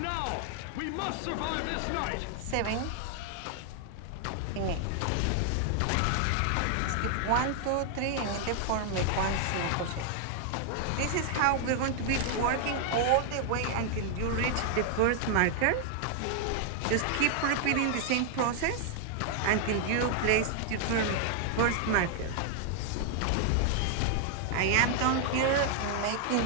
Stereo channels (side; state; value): both; different; correlation 0.00